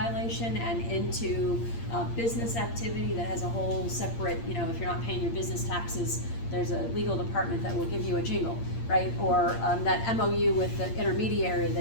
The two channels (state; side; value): late; right; 8.7 ms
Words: and into business activity that has a whole separate, if you're not paying your business taxes, there's a legal department that will give you a jingle, right? Or that MOU with the intermediary